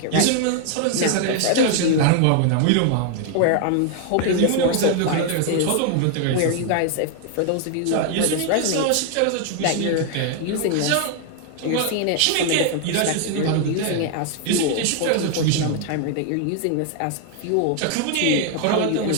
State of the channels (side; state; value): both; different; correlation 0.00